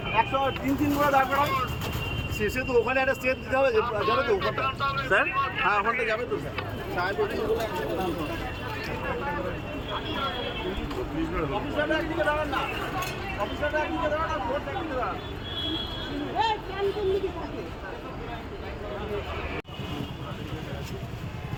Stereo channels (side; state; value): both; identical; correlation 1.00